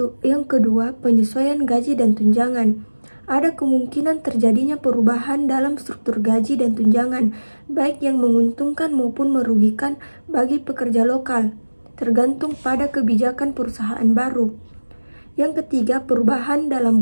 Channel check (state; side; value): inverted; both; correlation -1.00